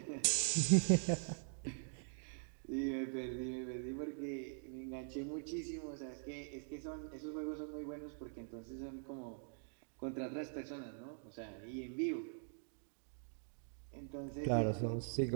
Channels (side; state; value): left; silent; digital silence